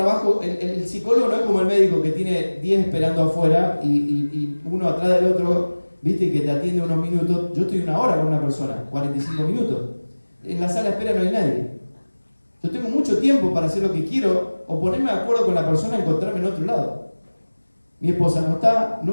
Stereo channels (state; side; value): inverted; both; correlation -1.00